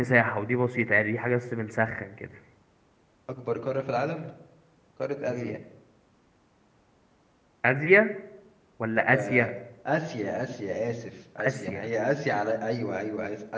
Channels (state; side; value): identical; both; correlation 1.00